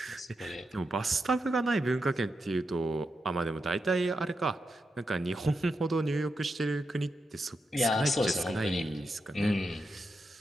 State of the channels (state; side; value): normal; both; correlation 0.86